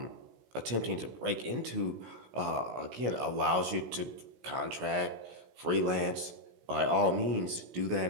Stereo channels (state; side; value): late; left; 16 ms